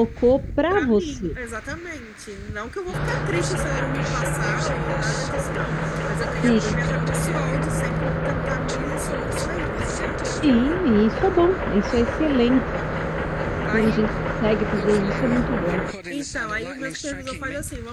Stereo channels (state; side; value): identical; both; correlation 1.00